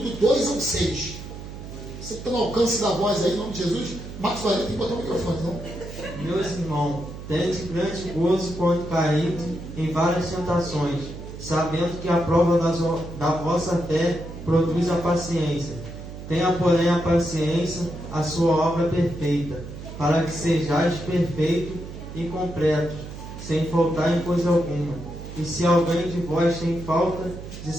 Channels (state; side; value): noise; right; hum, 11 dB below the sound